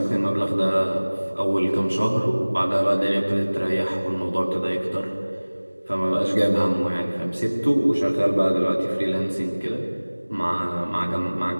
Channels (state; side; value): inverted; both; correlation -1.00